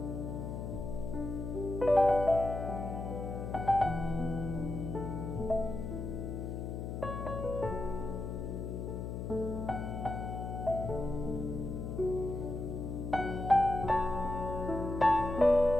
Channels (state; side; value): noise; left; hum, 5 dB below the sound